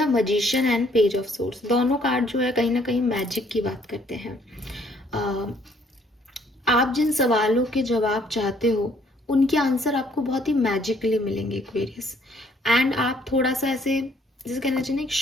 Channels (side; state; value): both; normal; correlation 0.64